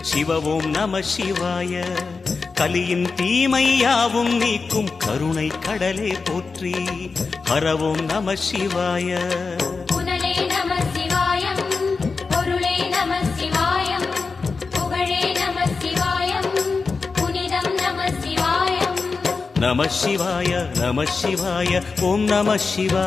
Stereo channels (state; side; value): quieter; right; 4.5 dB